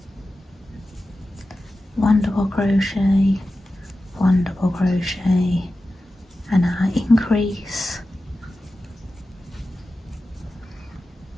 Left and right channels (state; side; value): normal; both; correlation 0.94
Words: One double crochet, 1 double crochet, and our increase,